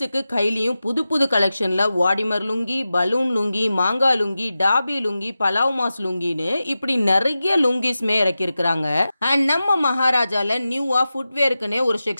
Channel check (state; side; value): inverted; both; correlation -0.93